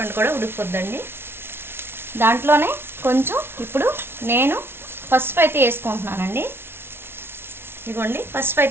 కూడా ఉడికిపోద్దండి. దాంట్లోనే కొంచెం ఇప్పుడు నేను పసుపు అయితే వేసుకుంటున్నానండి. ఇదిగోండి, పసుపు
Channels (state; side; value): late; left; 0.12 ms